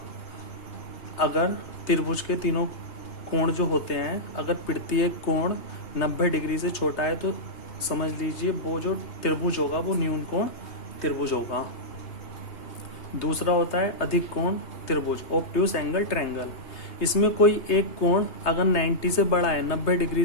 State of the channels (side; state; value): right; late; 3.3 ms